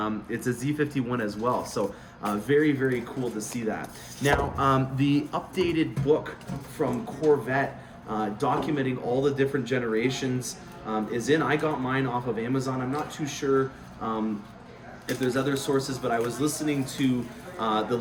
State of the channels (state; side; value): identical; both; correlation 1.00